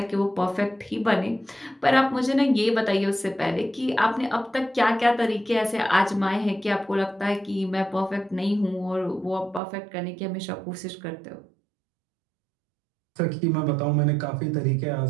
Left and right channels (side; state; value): left; drops out; at 9.6 s